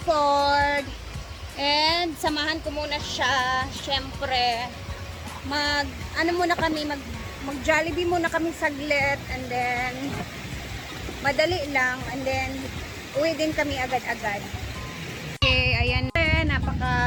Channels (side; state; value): both; identical; correlation 1.00